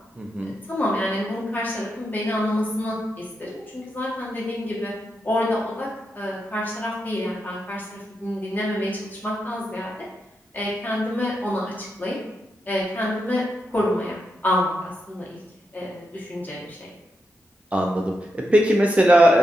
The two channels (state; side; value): normal; both; correlation 0.85